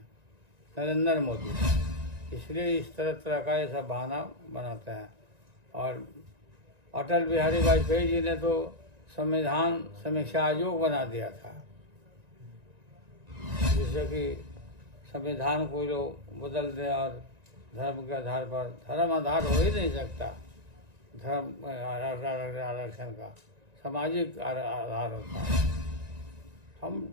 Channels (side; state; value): left; late; 1.9 ms